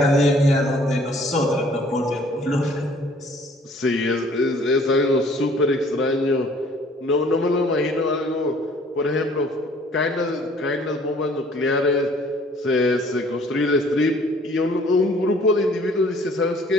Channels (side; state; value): both; normal; correlation 0.56